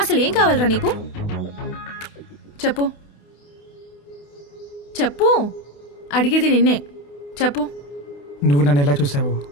ఏం కావాలరా నీకు? చెప్పు చెప్పు, అడిగేది నిన్నే. చెప్పు. నువ్వు నన్ను ఎలా చూసావో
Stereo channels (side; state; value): right; late; 28 ms